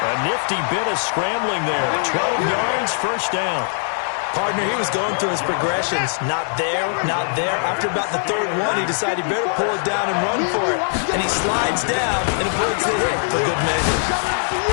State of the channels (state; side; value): silent; right; digital silence